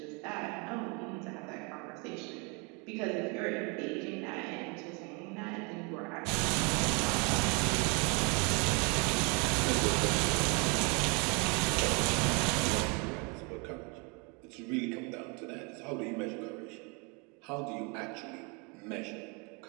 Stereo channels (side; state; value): left; quieter; 31.8 dB